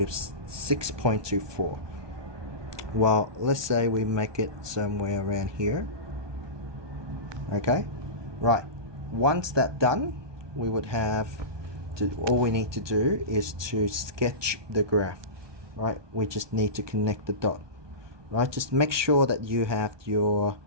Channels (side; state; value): left; late; 1.2 ms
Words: 6.24. Well, let's say we make it somewhere around here. Okay, right, once that's done, we would have to, all we need to do is to sketch the graph. Right, we just need to connect the dot. Right, just make sure that you have your